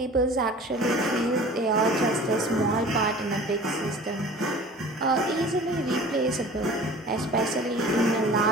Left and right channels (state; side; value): normal; both; correlation 0.43